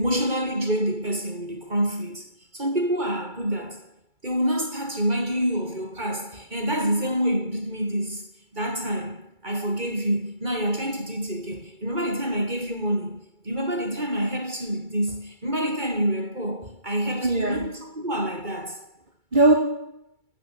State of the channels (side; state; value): left; late; 2.3 ms